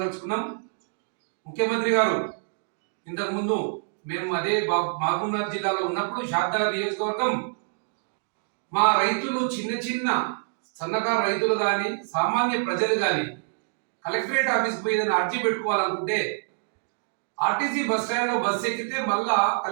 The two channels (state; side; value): silent; left; digital silence